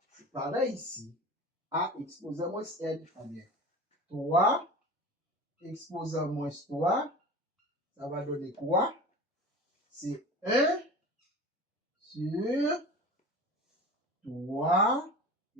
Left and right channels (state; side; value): normal; both; correlation 0.35